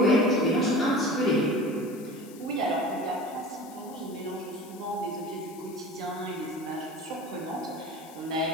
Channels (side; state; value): left; noise; hiss, 21 dB below the sound